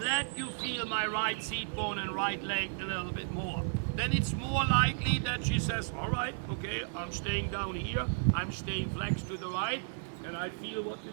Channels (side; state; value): left; silent; digital silence